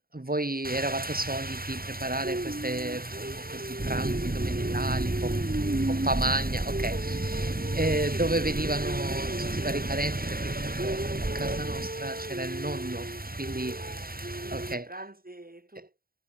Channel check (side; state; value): left; late; 0.43 ms